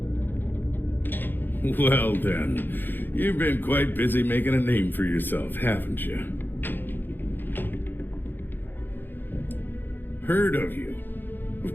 Well then, you've been quite busy making a name for yourself, haven't you? Heard of you.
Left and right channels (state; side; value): late; right; 0.094 ms